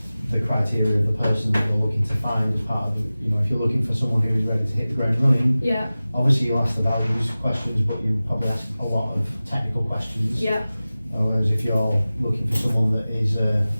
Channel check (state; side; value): inverted; both; correlation -0.97